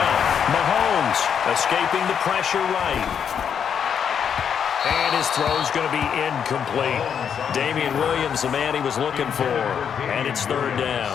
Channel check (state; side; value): quieter; right; 7.7 dB